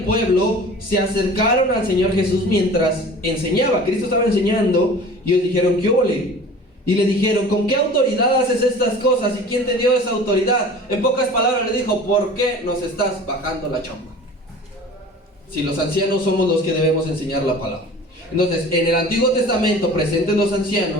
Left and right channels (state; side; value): normal; both; correlation 0.42